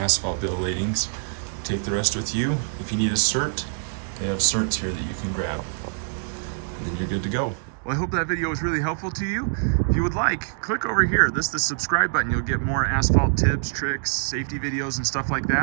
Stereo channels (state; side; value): silent; left; digital silence